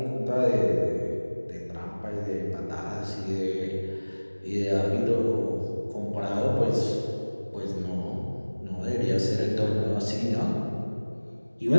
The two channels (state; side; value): inverted; both; correlation -1.00